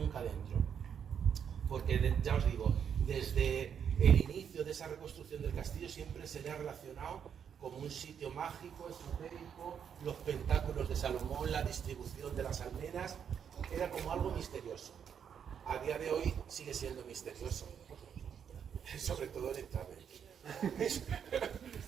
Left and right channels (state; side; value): quieter; left; 7.9 dB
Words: dentro. Porque ya os digo, desde el inicio de esa reconstrucción del castillo siempre se le ha relacionado como un sitio mágico, esotérico, los pentáculos de Salomón, la distribución de las almenas, era como algo misterioso. A día de hoy sigue siendo misterioso, sobre todo el entrar.